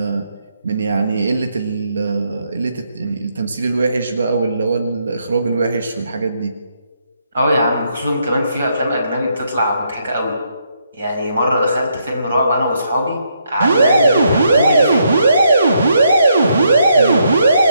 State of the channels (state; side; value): inverted; both; correlation -0.76